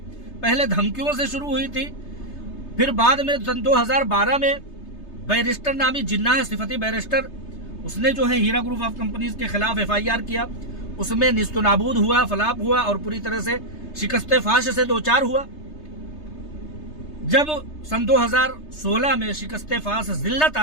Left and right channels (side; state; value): right; late; 3.3 ms